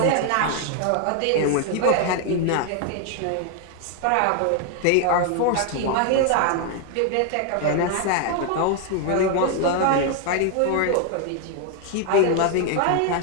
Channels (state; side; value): different; both; correlation 0.00